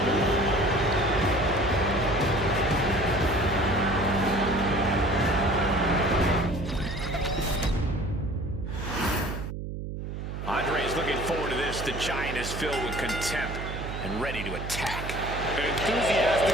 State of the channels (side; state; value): right; noise; hum, 6 dB below the sound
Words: Looking forward to this. The Giant is filled with contempt and ready to attack. An enthusiastic